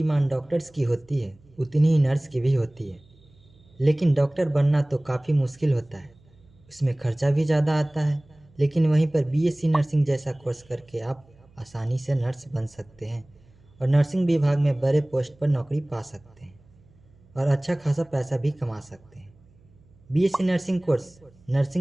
डॉक्टर्स की होती है उतनी ही नर्स की भी होती है। लेकिन डॉक्टर बनना तो काफ़ी मुश्किल होता है, उसमें खर्चा भी ज़्यादा आता है। लेकिन वहीं पर बीएससी नर्सिंग जैसा कोर्स करके आप आसानी से नर्स बन सकते हैं और नर्सिंग विभाग में बड़े पोस्ट पर नौकरी पा सकते हैं और अच्छा खासा पैसा भी कमा सकते हैं। BSc nursing course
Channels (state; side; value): noise; right; hum, 29 dB below the sound